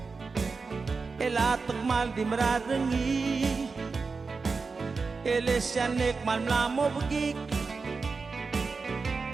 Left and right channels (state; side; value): quieter; left; 4.5 dB